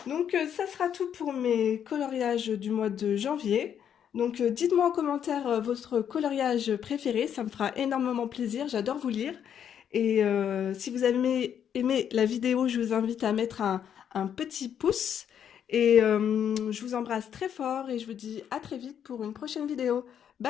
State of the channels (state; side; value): quieter; right; 8.8 dB